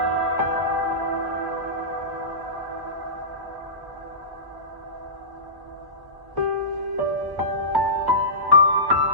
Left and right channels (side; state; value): left; late; 1.1 ms